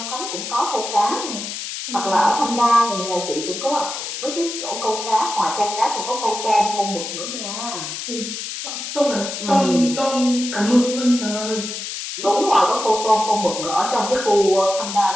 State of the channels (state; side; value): noise; left; hiss, 6 dB below the sound